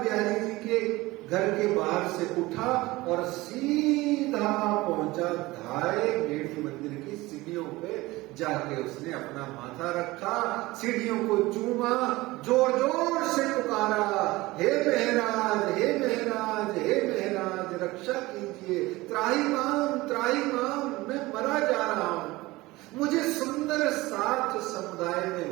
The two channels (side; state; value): left; quieter; 20.0 dB